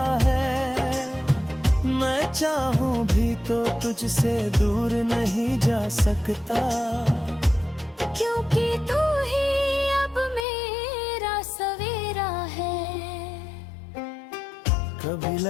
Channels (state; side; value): drops out; right; at 10.5 s